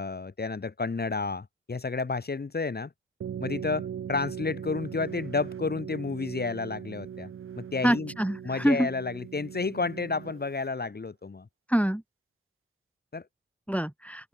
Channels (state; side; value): normal; both; correlation 0.45